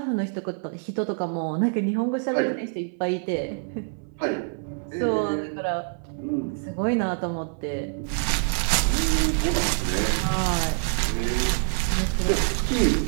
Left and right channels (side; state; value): left; silent; 61 dB below the other